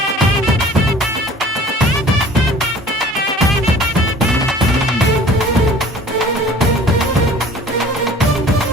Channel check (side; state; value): both; normal; correlation 0.47